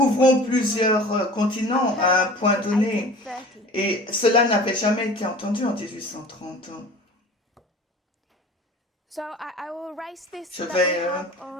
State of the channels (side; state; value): both; normal; correlation 0.42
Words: plusieurs continents à un point donné. Et cela n'avait jamais été entendu en 1830. So I will erase this Je that vais we have